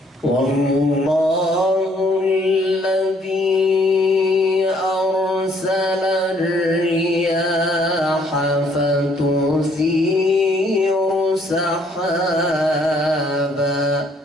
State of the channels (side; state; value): both; normal; correlation 0.65